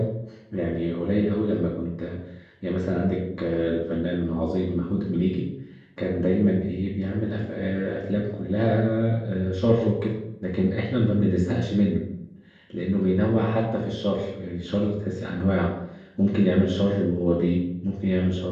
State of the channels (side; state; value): both; identical; correlation 1.00